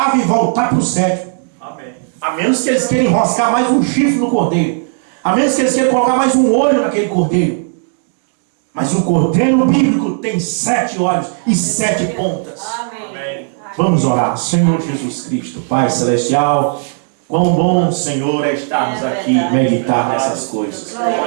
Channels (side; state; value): left; silent; 62 dB below the other